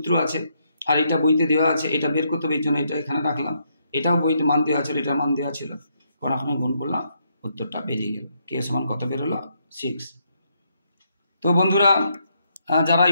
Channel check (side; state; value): both; inverted; correlation -0.76